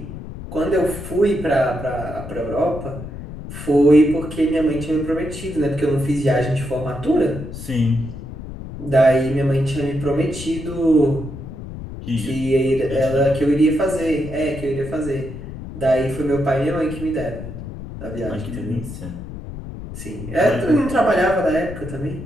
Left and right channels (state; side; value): noise; left; rumble, 10 dB below the sound